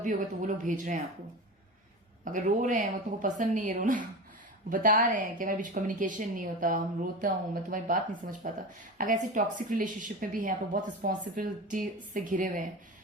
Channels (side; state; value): both; normal; correlation 0.27